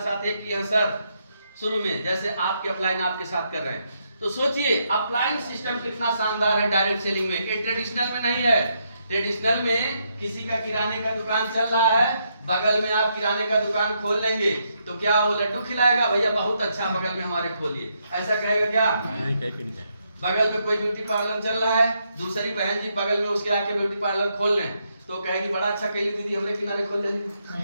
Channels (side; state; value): both; inverted; correlation -0.78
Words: साथ एक किया सर शुरू में, जैसे आपके अपलाइन आपके साथ कर रहे हैं। तो सोचिए अपलाइन सिस्टम कितना शानदार है डायरेक्ट सेलिंग में। ये ट्रेडिशनल में नहीं है। ट्रेडिशनल में किसी का किराने का दुकान चल रहा है, बगल में आप किराने का दुकान खोल लेंगे तो क्या वो लड्डू खिलाएगा? भैया बहुत अच्छा, बगल में हमारे खोलिए, ऐसा कहेगा क्या? नहीं। बगल में कोई ब्यूटी पार्लर चल रहा है, दूसरी बहन जी बगल में उसके आके ब्यूटी पार्लर खोल लें तो कहेगी बड़ा अच्छा कैली दीदी, हमरे किनारे खोल